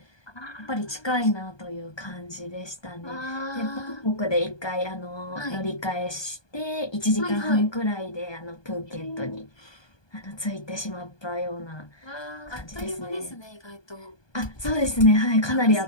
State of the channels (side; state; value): right; late; 1.2 ms